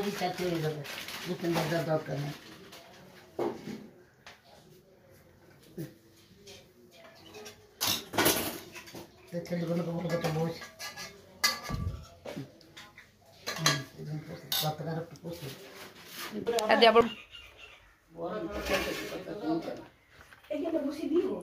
চারটে হয়ে যাবে, দুটো ভাজার দরকার নেই। ছেলেগুলোকে বলবো তো বস কতকার একটু বসে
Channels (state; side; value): identical; both; correlation 1.00